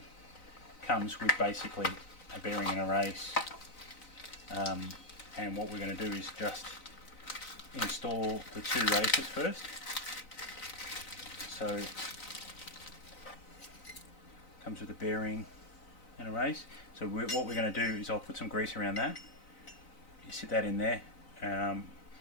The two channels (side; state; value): right; late; 4.0 ms